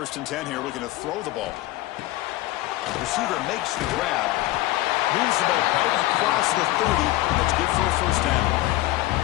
and 10 here, looking to throw the ball. The receiver makes the grab. Moves the ball out across the 30. That's good for a first down.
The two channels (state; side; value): quieter; right; 17.3 dB